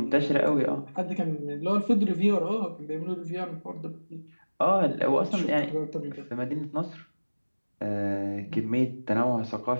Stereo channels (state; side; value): inverted; both; correlation -1.00